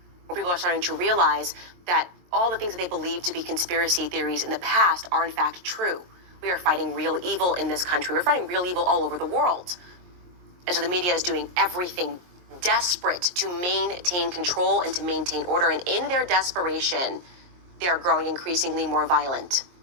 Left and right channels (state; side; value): late; left; 23 ms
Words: More people are starting to realize that all the things that they believed to be conspiracy theories in the past are in fact true. We are fighting real evil in this country. We're fighting real evil all over the world. And so the media is doing everything desperate to maintain control and to maintain order. And in their desperation, they are growing increasingly more violent,